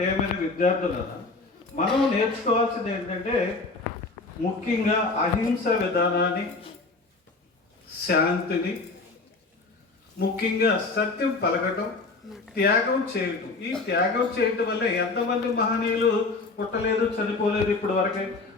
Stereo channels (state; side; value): quieter; right; 3.7 dB